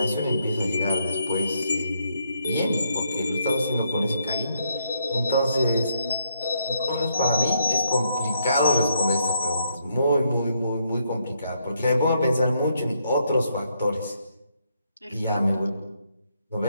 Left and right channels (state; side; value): inverted; both; correlation -0.76